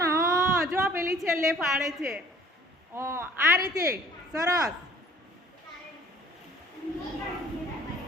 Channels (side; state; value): both; normal; correlation 0.53